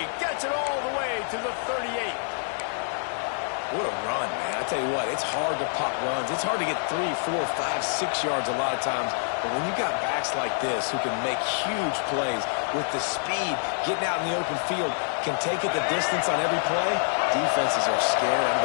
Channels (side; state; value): right; silent; digital silence